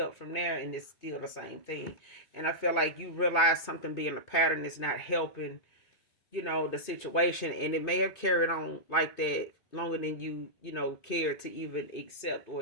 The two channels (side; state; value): right; late; 2.6 ms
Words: from there and it's still the same thing. And I feel like you realize something being a pattern is not helping, the situation, and it may have carried on like that longer than you cared to even accept or